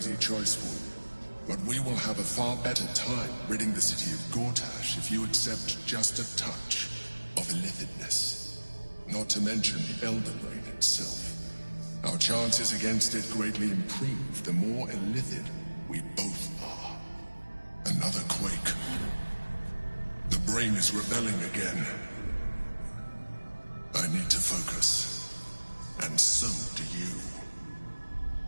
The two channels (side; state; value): both; inverted; correlation -1.00